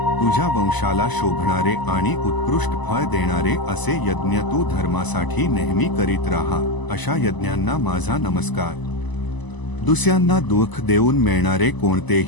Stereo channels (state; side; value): late; right; 1.0 ms